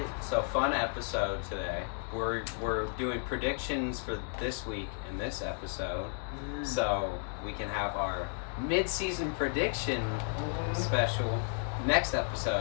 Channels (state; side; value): silent; right; 56 dB below the other